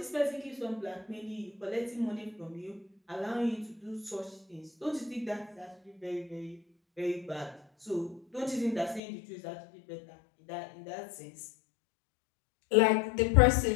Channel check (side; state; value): right; drops out; at 9.0 s